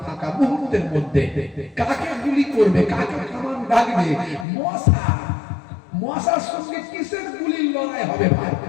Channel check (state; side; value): drops out; right; at 4.5 s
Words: ফাঁকা। মুহূর্তের মধ্যে কাকে গুলি করবে, কাকে কামান লাগবে? মশার সঙ্গে কিসের গুলির লড়াই হবে ভাই?